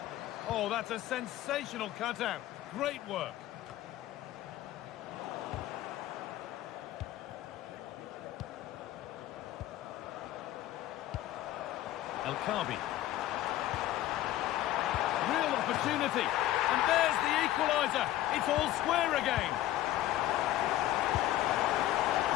Oh, that's a sensational cutout. Great work. El Khabi. Real opportunity. And there's the equaliser. It's all square again.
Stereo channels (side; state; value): right; quieter; 14.2 dB